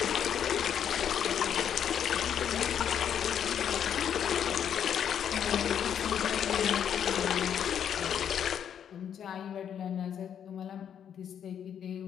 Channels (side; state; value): right; quieter; 8.8 dB